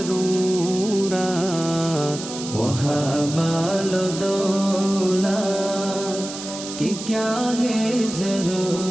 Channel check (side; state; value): right; noise; hiss, 10 dB below the sound